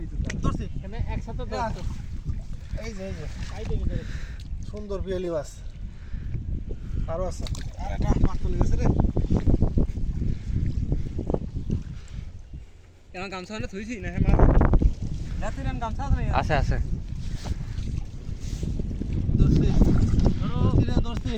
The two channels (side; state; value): both; identical; correlation 1.00